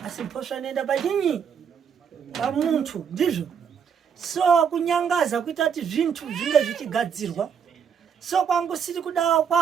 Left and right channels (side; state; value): left; quieter; 7.3 dB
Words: mhosva inoenda pachinyi pamuntu ndizvo. So kunyangaza kuita kuti zvintu zvinge zvichigadzirwa so kwangu siri kudawa